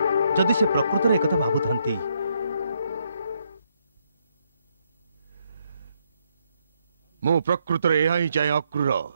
जदि से प्रकृत एक कथा भाबुथांती। मु प्रकृत रे यही चाहे अक्रूर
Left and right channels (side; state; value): both; inverted; correlation -0.75